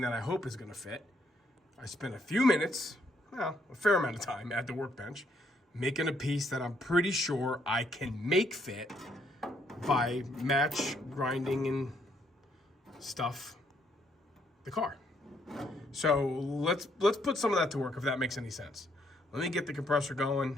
that I hope is going to fit. I spend a few minutes, well, a fair amount of time at the workbench, making a piece that I'm pretty sure I can make fit by match grinding and stuff the car. So let's put some of that to work, if that makes any sense. Let me get the compressor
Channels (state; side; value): normal; both; correlation 0.71